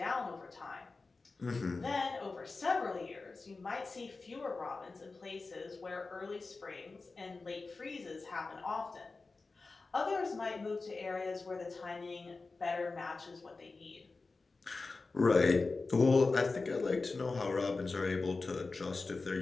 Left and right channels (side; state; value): right; quieter; 3.8 dB